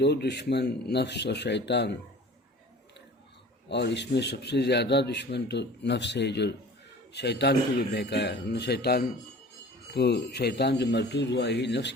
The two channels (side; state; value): both; normal; correlation 0.44